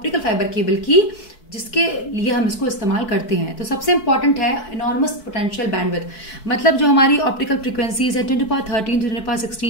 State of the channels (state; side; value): late; right; 4.6 ms